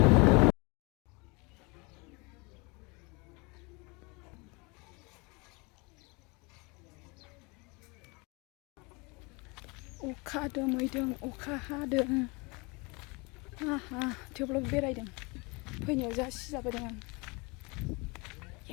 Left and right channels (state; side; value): quieter; right; 28.2 dB